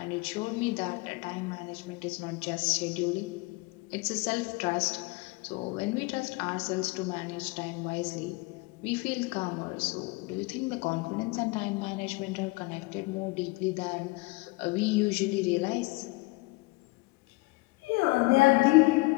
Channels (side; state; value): right; quieter; 24.4 dB